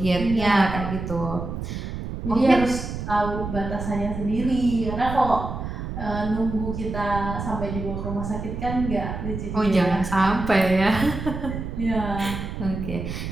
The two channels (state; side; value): noise; right; rumble, 6 dB below the sound